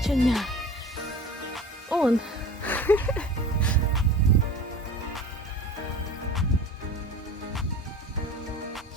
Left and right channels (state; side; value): normal; both; correlation 0.39